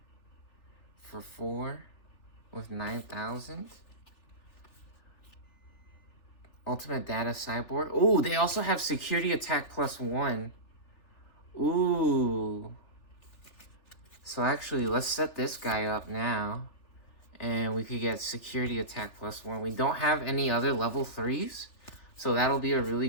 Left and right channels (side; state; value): right; late; 3.4 ms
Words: for 4 with 9,000. Ultimate Data Cyborg. Ooh, they also have Security Attack +1. Ooh. So actually, let's set this guy up now. And we could get Security Attack +1. We don't have any other level 3s. So that'll be a really